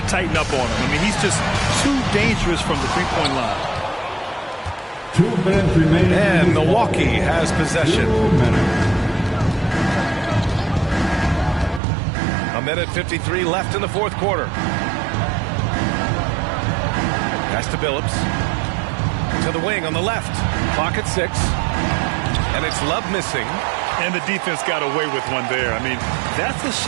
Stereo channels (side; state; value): left; drops out; at 11.8 s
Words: tighten up on him. I mean, he's just too dangerous from the three-point line. 2 minutes remaining. And Milwaukee has possession. 1:53 left in the fourth quarter. Pass to Billups. To the wing on the left. Clock at 6. And it's Love missing. And the defense got away with one there. I mean, that's the